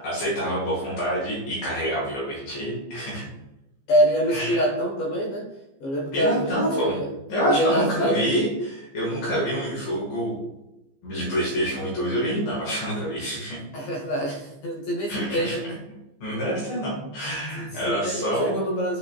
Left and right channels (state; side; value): late; right; 15 ms